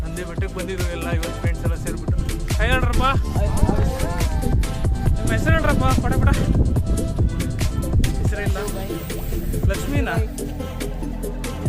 Nandi ಬೆಟ್ಟಕ್ಕೆ ಬಂದಿದ್ರು ಎಲ್ಲ ಇವತ್ತು ಫ್ರೆಂಡ್ಸ್ ಎಲ್ಲ ಸೇರಿಬಿಟ್ಟು. ಕೈ ಹೇಳ್ರಪ್ಪ, ನಿಮ್ಮ ಹೆಸರು ಹೇಳ್ರಪ್ಪ ಪಡ ಪಡ. ಹೆಸರಿಲ್ಲ, ಲಕ್ಷ್ಮೀನಾ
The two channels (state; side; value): identical; both; correlation 1.00